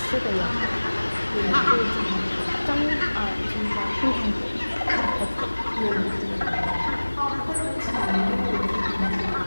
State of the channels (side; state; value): both; inverted; correlation -1.00